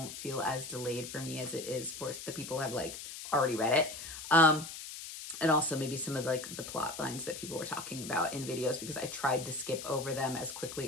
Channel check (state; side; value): noise; left; hiss, 10 dB below the sound